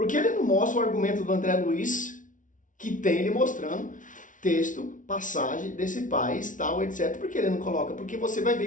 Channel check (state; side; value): late; right; 0.38 ms